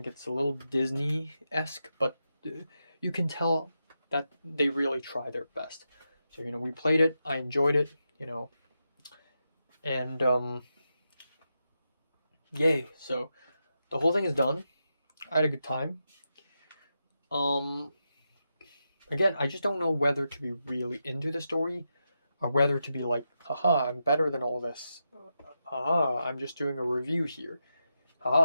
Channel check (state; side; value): inverted; both; correlation -0.87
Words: it's a little Disney-esque, but you can tell that they really try their best. So, we played it, I enjoyed it, and, yay. So, the whole thing is done. I had a good time. Again, I just don't know whether to be really into the story or whether to be like, haha, I'm better than all this. Haha, I'm just doing a review here.